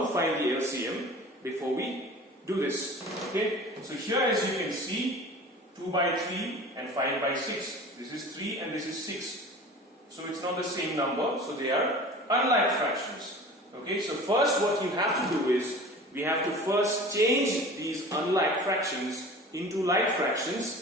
find the LCM before we do this. Okay? So here, as you can see, 2 by 3 and 5 by 6. This is 3 and this is 6. So it's not the same number, so they are unlike fractions. Okay? So first what you have to do is, we have to first change these unlike fractions into like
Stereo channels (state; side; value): normal; both; correlation 0.40